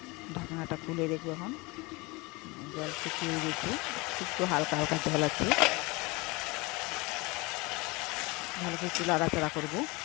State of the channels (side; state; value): right; quieter; 25.2 dB